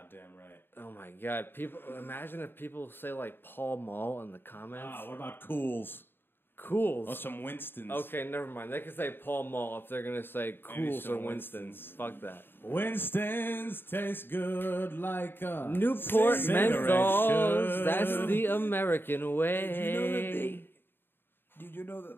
right. Oh my god! Imagine if people say like Paul Mall in the comments. Ah, what about Cools? Cools. Or some Winstons? Okay, never mind. They can say Paul Mall if they're gonna say Cools some or Winston's. Fuck that. Winston's taste good like a Newport cigarette menthols. should. That's the American way. Did you know that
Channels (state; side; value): late; right; 0.10 ms